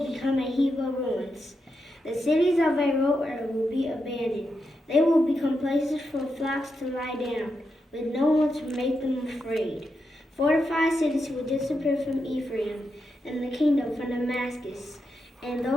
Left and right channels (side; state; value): both; normal; correlation 0.85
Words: become a heap of ruins. The cities of Aroer will be abandoned. They will become places for flocks to lie down, with no one to make them afraid. Fortified cities will disappear from Ephraim, and the kingdom from Damascus, and